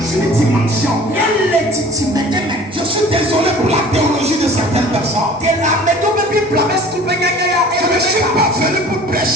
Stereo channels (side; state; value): both; normal; correlation 0.46